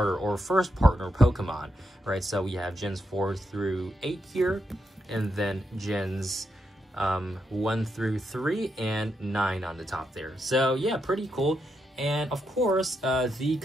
or first partner Pokemon, right? So we have gens 4 through 8 here, and then gens 1 through 3 and 9 on the top there. So yeah, pretty cool. And of course, the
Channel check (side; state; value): both; normal; correlation 0.83